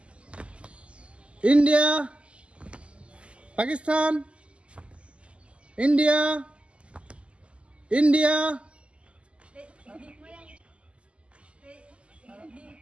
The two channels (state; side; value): late; left; 0.055 ms